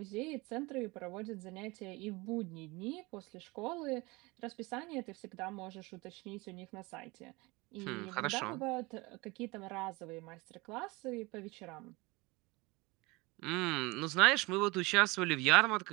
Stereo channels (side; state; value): left; quieter; 24.2 dB